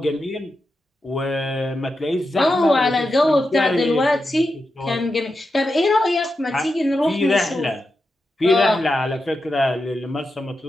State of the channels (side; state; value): both; normal; correlation 0.89